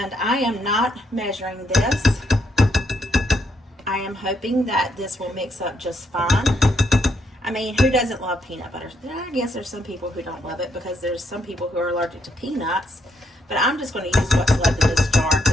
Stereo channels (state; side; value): normal; both; correlation 0.75